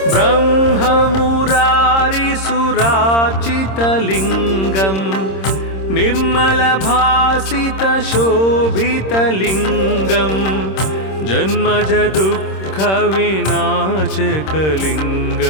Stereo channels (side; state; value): right; late; 26 ms